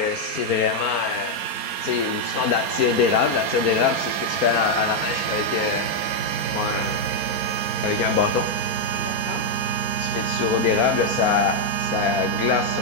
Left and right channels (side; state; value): right; late; 4.3 ms